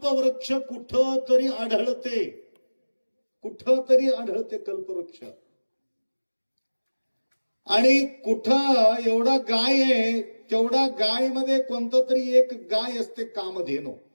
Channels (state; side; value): inverted; both; correlation -1.00